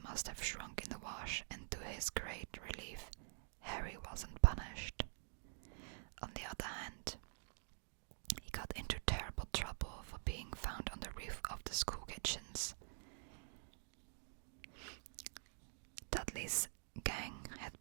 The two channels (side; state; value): left; silent; digital silence